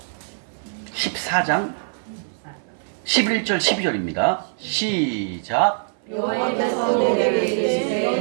11절 12절입니다. 시작. 여호와께서 내게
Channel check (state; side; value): silent; left; 59 dB below the other